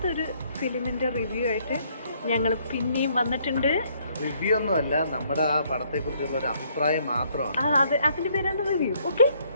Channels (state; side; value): inverted; both; correlation -0.67